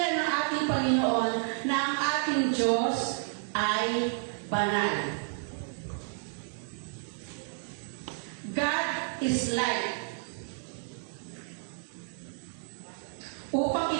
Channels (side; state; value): left; silent; digital silence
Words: ng ating Panginoon na ang ating Diyos ay banal. God is light. Upang